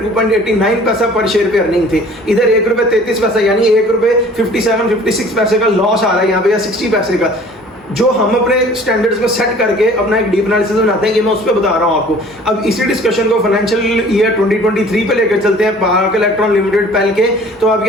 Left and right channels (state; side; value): normal; both; correlation 0.50